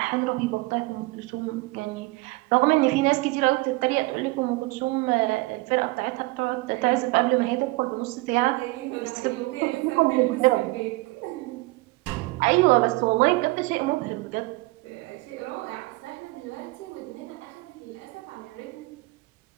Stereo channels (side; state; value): left; quieter; 22.9 dB